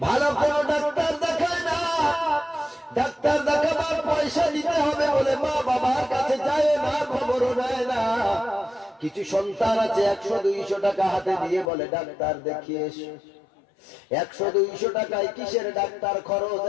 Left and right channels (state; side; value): drops out; right; at 11.7 s